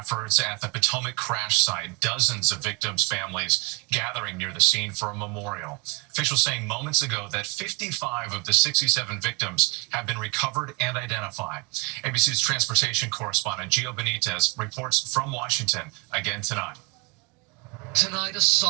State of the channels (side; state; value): left; quieter; 30.5 dB